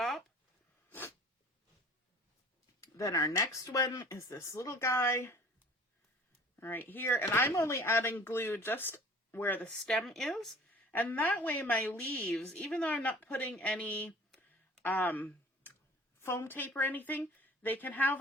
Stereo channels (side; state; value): both; normal; correlation 0.47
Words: Then our next one is this little guy right here. And I'm only adding glue just where the stem is. And that way my leaves, even though I'm not putting any foam tape or anything, they can have